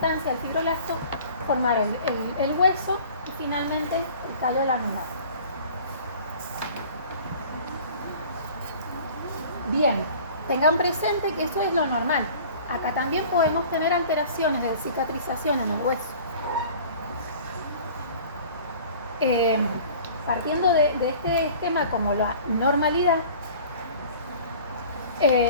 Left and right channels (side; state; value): both; inverted; correlation -0.45